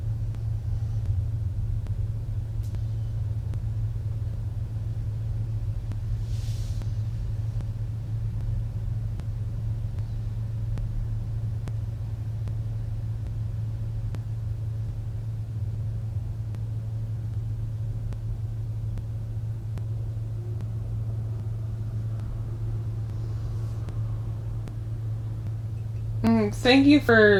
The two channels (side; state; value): both; identical; correlation 1.00